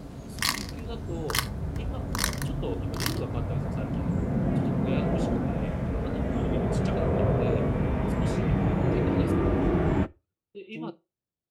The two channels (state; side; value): identical; both; correlation 1.00